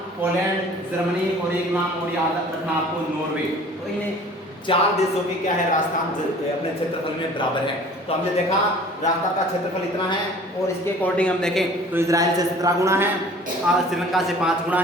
पोलैंड, जर्मनी और एक नाम और याद रखना आपको, नॉर्वे। तो इन्हें 4 देशों की क्या है राजस्थान अपने क्षेत्रफल में बराबर है। तो हमने देखा राजस्थान का क्षेत्रफल इतना है और इसके अकॉर्डिंग हम देखें तो इजराइल से 17 गुना है, श्रीलंका से 5 गुना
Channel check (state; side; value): normal; both; correlation 0.48